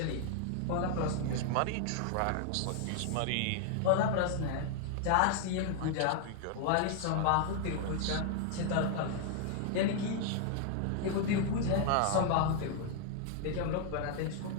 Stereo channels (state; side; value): different; both; correlation 0.00